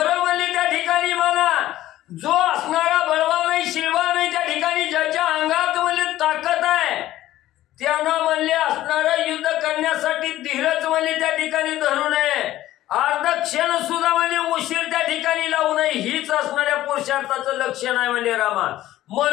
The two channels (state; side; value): quieter; right; 14.5 dB